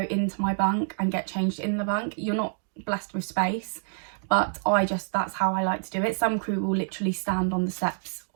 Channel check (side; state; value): left; silent; digital silence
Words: into my bunk and get changed in the bunk. You're not blessed with space, but that's how I like to do it. Some crew will literally stand on the steps